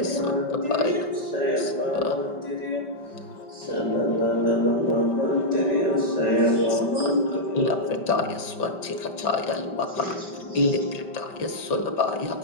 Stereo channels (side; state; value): right; late; 5.2 ms